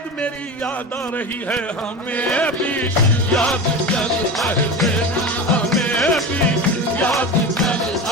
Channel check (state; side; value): normal; both; correlation 0.27